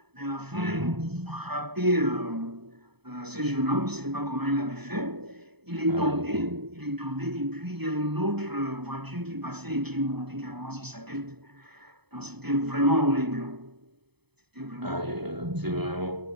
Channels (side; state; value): left; late; 0.98 ms